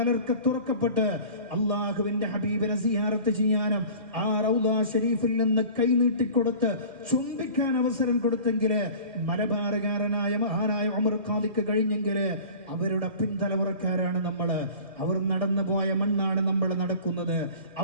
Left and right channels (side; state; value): left; late; 2.2 ms